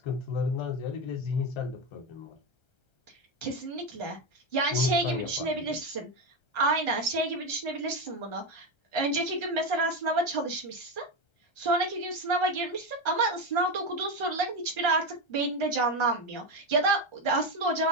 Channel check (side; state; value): right; late; 1.3 ms